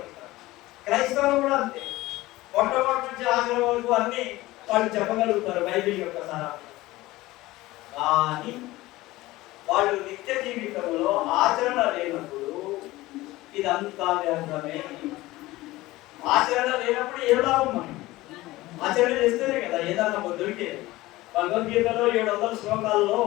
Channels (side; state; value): right; quieter; 18.5 dB